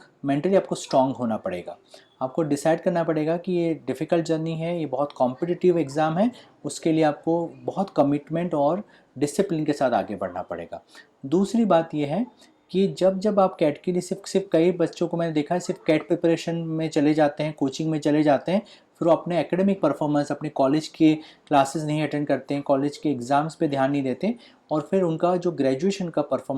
मेंटली आपको स्ट्रांग होना पड़ेगा। आपको डिसाइड करना पड़ेगा कि ये डिफ़िकल्ट जर्नी है, ये बहुत कॉम्पिटिटिव एग्ज़ाम है, उसके लिए आपको बहुत कमिटमेंट और डिसिप्लिन के साथ आगे बढ़ना पड़ेगा। दूसरी बात ये है कि जब जब आप कैट के लिए सिर्फ कई बच्चों को मैंने देखा है सिर्फ कैट प्रिपरेशन में चले जाते हैं, कोचिंग में चले जाते हैं, फिर वो अपने एकेडमिक परफॉर्मेंस, अपने कॉलेज के क्लासेस नहीं अटेंड करते हैं, कॉलेज के एग्ज़ाम्स पे ध्यान नहीं देते, और फिर उनका जो ग्रेजुएशन का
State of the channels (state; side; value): identical; both; correlation 1.00